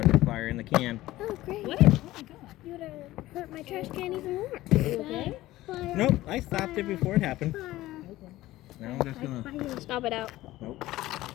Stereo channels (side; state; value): right; quieter; 16.5 dB